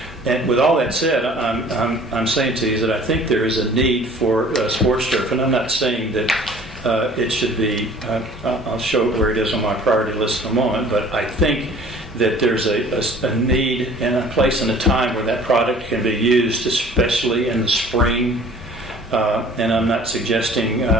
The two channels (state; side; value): normal; both; correlation 0.50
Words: And with all that said, I'm saying to you that I think there is a need for sports turf, and I'm not saying that it should be, I'll show where it is on my priority list in a moment, but I think that there's a need and a place and a time where that product can be used, especially in the spring. And I'm not suggesting